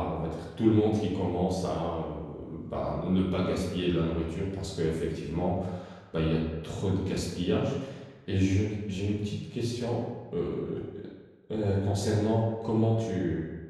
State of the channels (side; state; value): both; identical; correlation 1.00